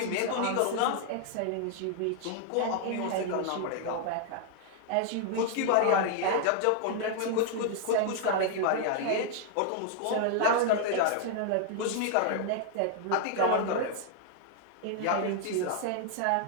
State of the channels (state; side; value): different; both; correlation -0.01